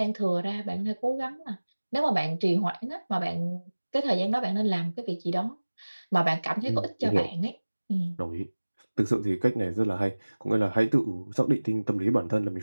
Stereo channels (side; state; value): both; inverted; correlation -1.00